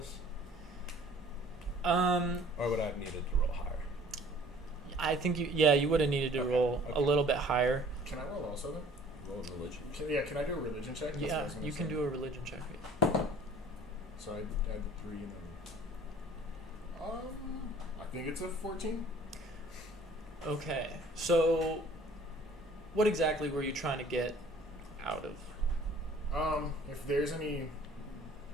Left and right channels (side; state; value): both; normal; correlation 0.52